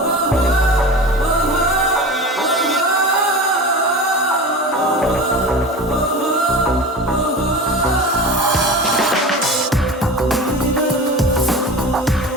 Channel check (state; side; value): normal; both; correlation 0.32